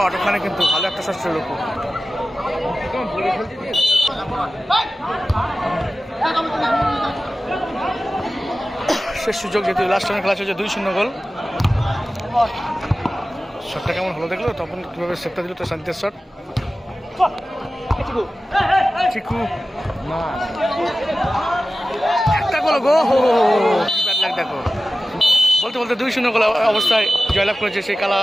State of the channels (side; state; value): both; normal; correlation 0.95